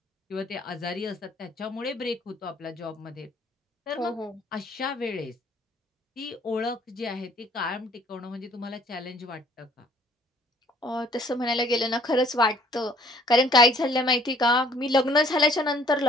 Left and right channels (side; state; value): both; normal; correlation 0.58